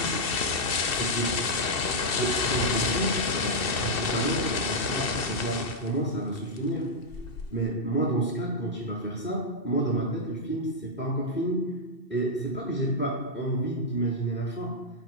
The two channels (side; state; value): right; late; 2.7 ms